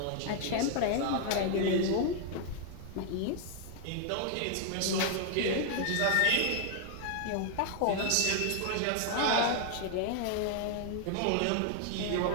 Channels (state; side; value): different; both; correlation 0.00